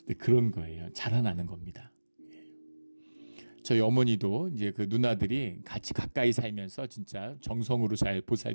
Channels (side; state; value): both; inverted; correlation -1.00